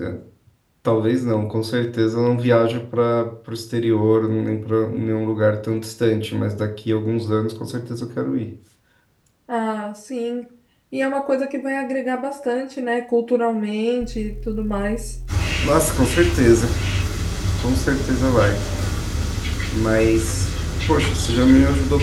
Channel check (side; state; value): both; identical; correlation 1.00